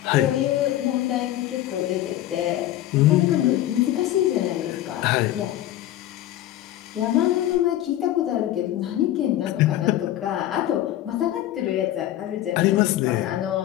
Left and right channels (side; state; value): right; quieter; 13.6 dB